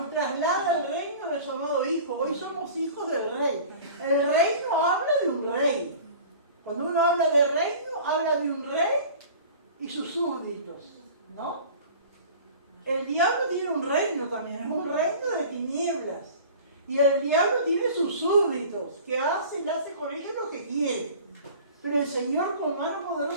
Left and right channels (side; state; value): both; inverted; correlation -0.42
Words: traslada al reino de su amado Hijo. Hoy somos hijos del Rey. El reino habla de un rey. Cuando uno habla de reino, habla de un rey y sus súbditos, ¿no? El diablo tiene un reino también, es un reino de tinieblas. Y el diablo tiene sus súbditos, que hace con ellos lo que quiere. Pero el Señor con mano